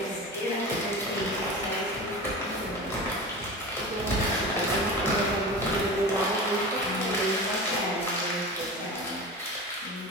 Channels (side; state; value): both; normal; correlation 0.31